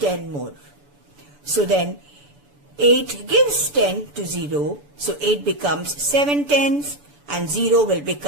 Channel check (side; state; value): left; late; 6.9 ms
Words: more. So then 8 gives 10 to 0. So 8 becomes 7 tens and 0 will